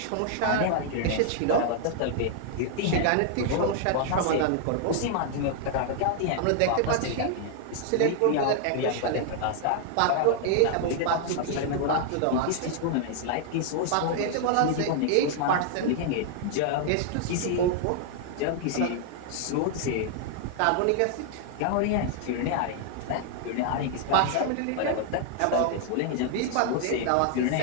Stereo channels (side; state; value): both; different; correlation -0.01